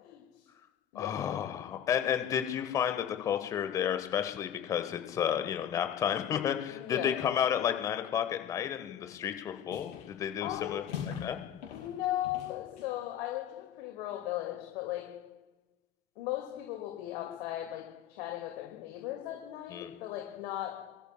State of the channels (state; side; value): quieter; right; 9.7 dB